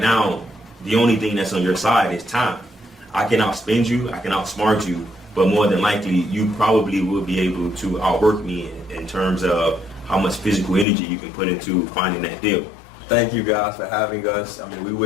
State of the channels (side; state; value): right; drops out; at 10.9 s